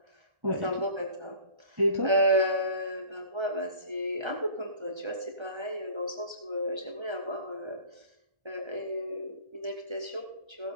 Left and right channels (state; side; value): late; left; 1.3 ms